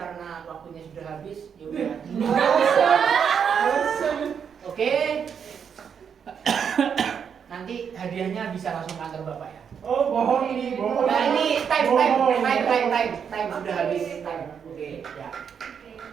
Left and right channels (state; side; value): quieter; left; 7.3 dB